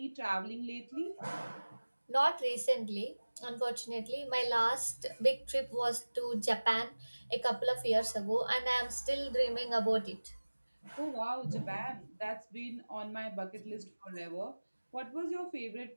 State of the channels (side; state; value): both; inverted; correlation -1.00